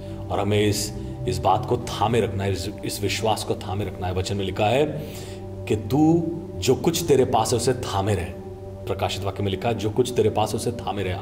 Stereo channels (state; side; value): identical; both; correlation 1.00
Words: और हमें इस बात को थामे रखना है, इस विश्वास को थामे रखना है। वचन में लिखा है कि तू जो कुछ तेरे पास है उसे थामे रहे, प्रकाशित वाक्य में लिखा है, जो कुछ तेरे पास उसे थामे रहे।